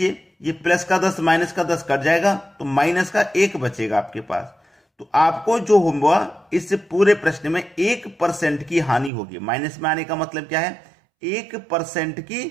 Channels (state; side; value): drops out; left; at 9.1 s